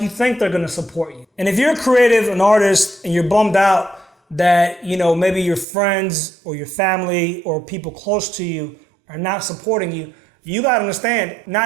you think they're going to support you. And if you're creative, an artist, and you're bummed out that, maybe your friends or your family or people close to you are not supporting you, you got to understand,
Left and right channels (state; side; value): drops out; left; at 5.7 s